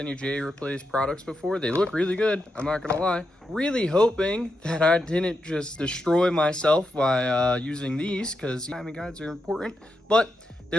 J-replace products before. They look really good, I'm not gonna lie. Really hoping that I didn't just destroy myself by using these, because timing guides are important, but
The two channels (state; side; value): normal; both; correlation 0.85